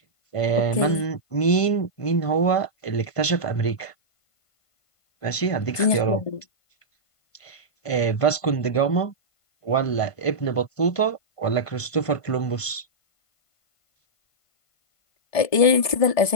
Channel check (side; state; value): right; late; 1.5 ms